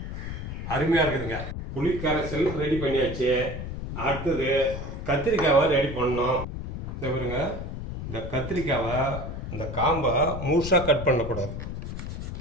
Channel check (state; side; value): noise; left; rumble, 6 dB below the sound